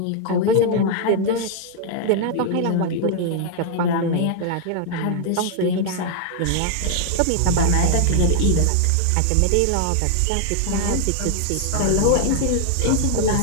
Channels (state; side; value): different; both; correlation 0.00